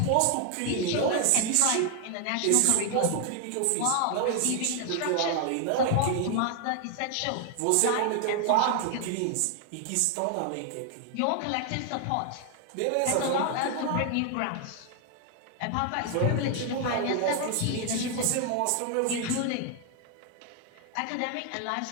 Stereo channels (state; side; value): different; both; correlation 0.00